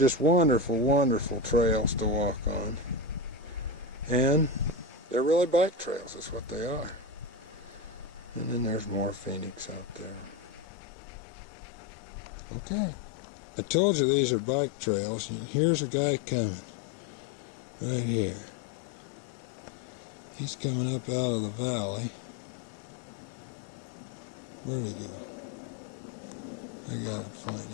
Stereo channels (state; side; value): drops out; right; at 10.7 s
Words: wonderful, wonderful trails to walk on. And they're really bike trails, is what they are. And then there's more Phoenix out there. Okay. I told you these are bike trails. Here's a guy coming. Right here. He's coming up out of the valley. Where'd he go? I gotta find